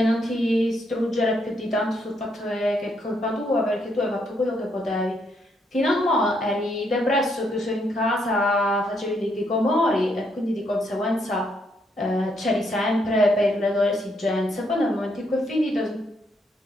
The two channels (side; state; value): both; normal; correlation 0.75